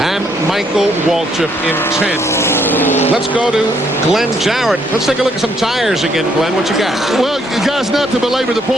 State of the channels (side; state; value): both; normal; correlation 0.70